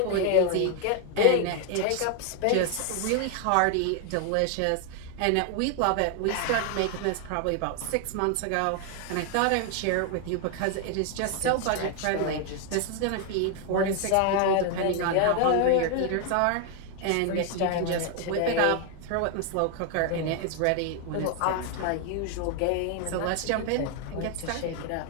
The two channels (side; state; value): both; different; correlation 0.00